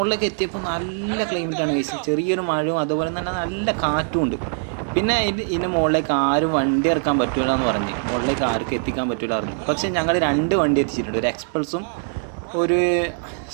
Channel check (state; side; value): silent; left; digital silence